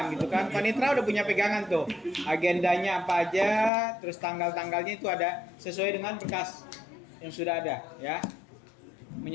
gitu kan. Panitra udah punya pegangan tuh. Agendanya apa aja, terus tanggal-tanggalnya itu ada sesuai dengan berkas yang sudah ada ya.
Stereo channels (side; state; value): right; drops out; at 3.7 s